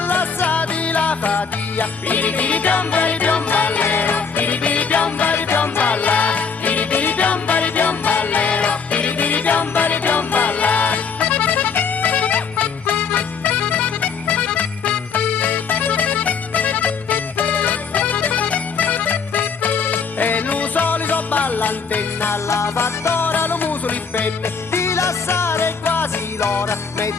lasciati la fatia. Piripiri piombari piomballero, piripiri piombari piomballa, piripiri piombari piomballero, piripiri piombari piomballa. E lo solito ballantenna, la fattora lo muso li penne, di lasciare quasi l'ora,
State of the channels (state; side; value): quieter; right; 5.8 dB